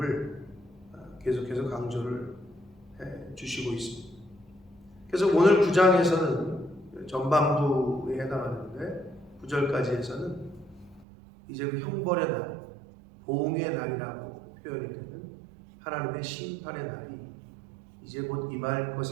계속해서 강조를 해 주시고 있습니다. 그래서 오늘 9장에서는 전반부에 해당하는데 9절까지 해서는 이제 그 형벌의 날, 보응의 날이라고 표현이 되는 하나님의 심판의 날이 이제 곧 임할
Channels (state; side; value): drops out; left; at 11.1 s